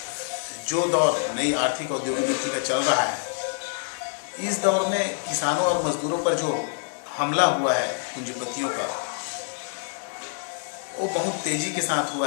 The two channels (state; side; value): silent; right; digital silence